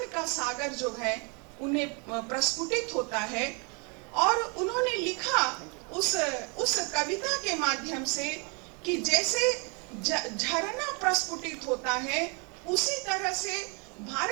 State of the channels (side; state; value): left; quieter; 34.3 dB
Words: का सागर जो है उन्हें प्रस्फुटित होता है। और उन्होंने लिखा उस कविता के माध्यम से कि जैसे झरना प्रस्फुटित होता है, उसी तरह से